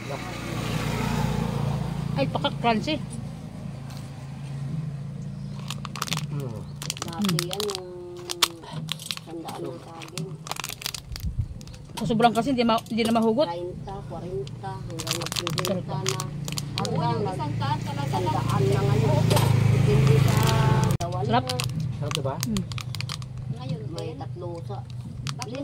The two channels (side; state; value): both; identical; correlation 1.00